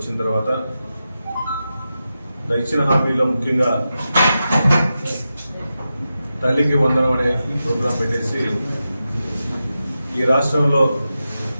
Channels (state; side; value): inverted; both; correlation -0.91